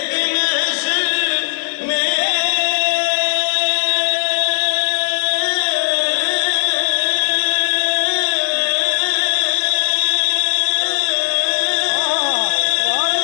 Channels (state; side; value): silent; right; digital silence